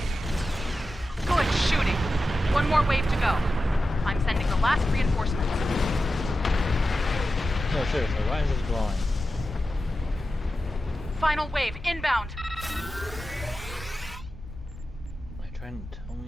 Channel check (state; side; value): normal; both; correlation 0.92